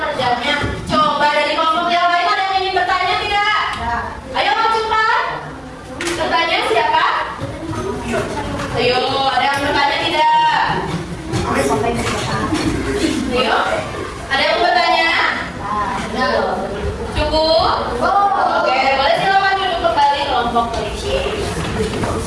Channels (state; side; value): identical; both; correlation 1.00